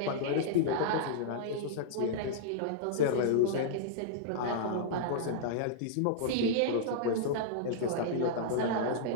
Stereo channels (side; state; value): both; different; correlation -0.02